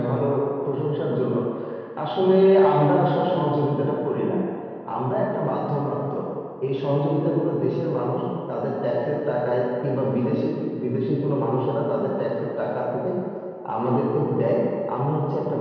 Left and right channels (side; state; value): both; identical; correlation 1.00